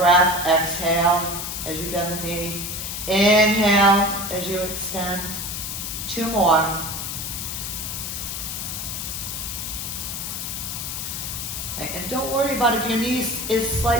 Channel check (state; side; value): noise; left; hiss, 5 dB below the sound